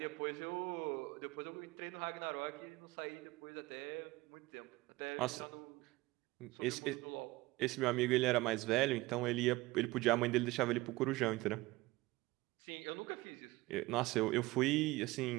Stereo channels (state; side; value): quieter; left; 20.5 dB